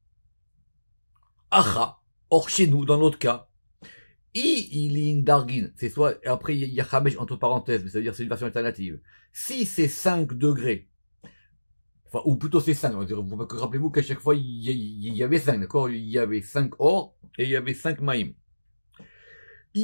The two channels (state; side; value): inverted; both; correlation -1.00